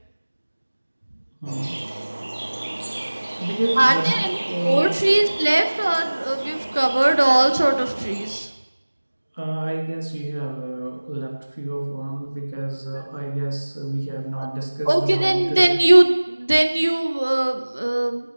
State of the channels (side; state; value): both; inverted; correlation -1.00